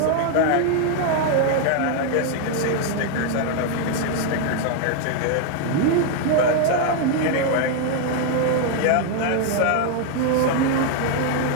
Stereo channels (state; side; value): different; both; correlation 0.00